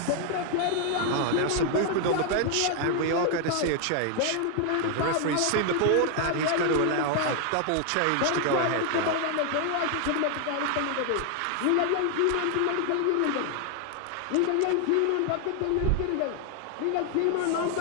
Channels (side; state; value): both; different; correlation 0.00